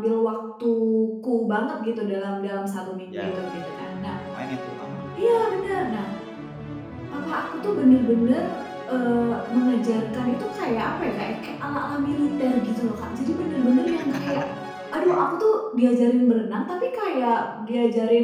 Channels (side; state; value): both; identical; correlation 1.00